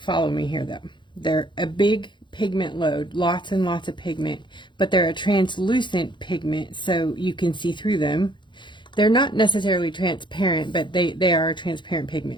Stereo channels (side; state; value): right; late; 0.23 ms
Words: me here though, they're a big pigment load, lots and lots of pigment, but they're a translucent pigment, so you can see through them. They're not necessarily transparent, but they are a transparent